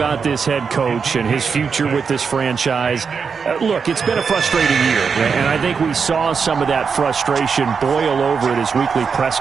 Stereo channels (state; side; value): quieter; left; 5.8 dB